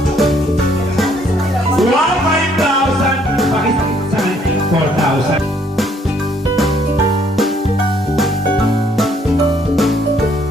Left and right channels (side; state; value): both; normal; correlation 0.66